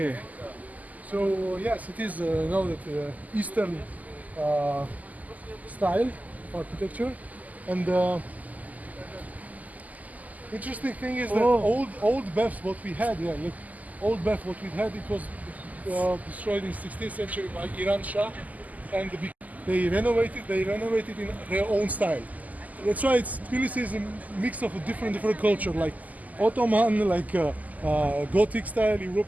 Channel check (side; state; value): left; late; 0.078 ms